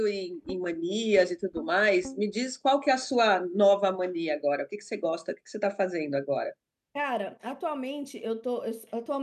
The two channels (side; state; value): both; identical; correlation 1.00